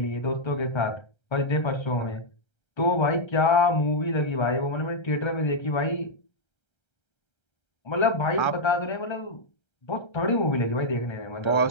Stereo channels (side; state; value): right; late; 1.3 ms